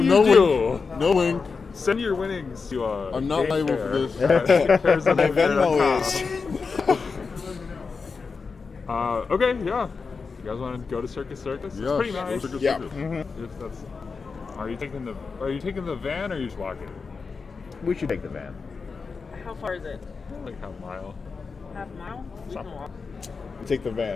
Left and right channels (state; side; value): quieter; right; 4.8 dB